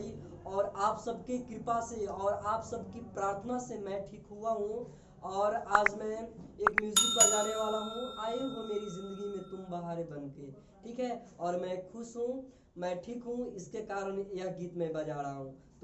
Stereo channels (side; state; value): both; identical; correlation 1.00